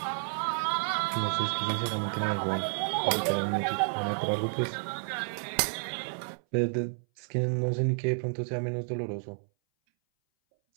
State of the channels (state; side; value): silent; left; 58 dB below the other